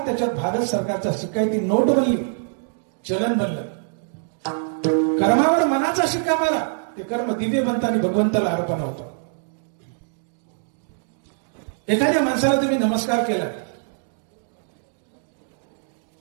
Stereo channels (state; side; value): silent; left; digital silence